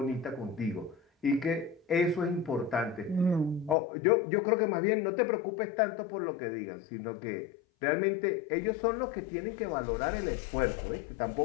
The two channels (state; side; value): drops out; right; at 3.8 s